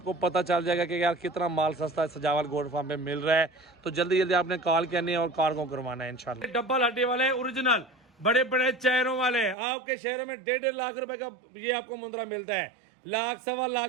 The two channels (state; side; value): drops out; left; at 9.6 s